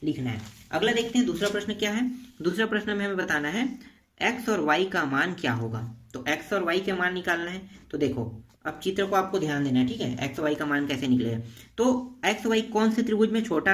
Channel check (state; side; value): identical; both; correlation 1.00